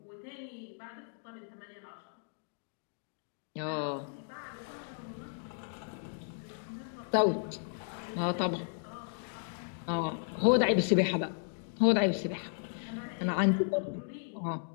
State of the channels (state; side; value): silent; right; digital silence